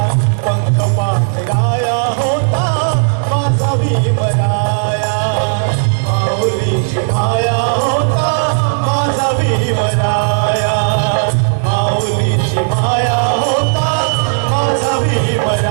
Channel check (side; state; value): left; silent; digital silence